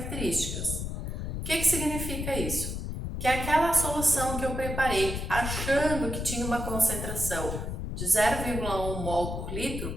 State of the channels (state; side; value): noise; left; rumble, 4 dB below the sound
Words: O que significa isso? Que aquela solução que eu preparei achando que tinha uma concentração de 0,1 mol por litro,